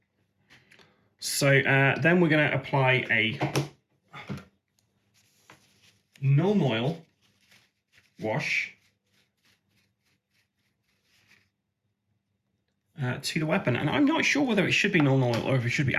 So then we're going to apply a non-oil wash to the weapon. And I'm not sure whether it should be non-oil or if it should be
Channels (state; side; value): identical; both; correlation 1.00